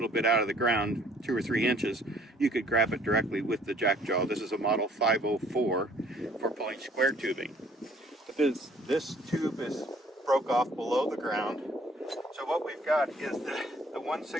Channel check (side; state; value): both; normal; correlation 0.58